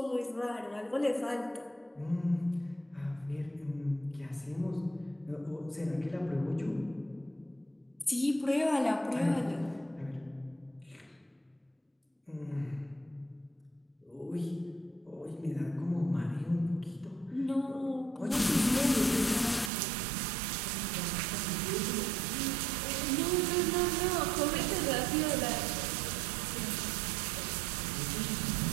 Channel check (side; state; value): left; drops out; at 19.7 s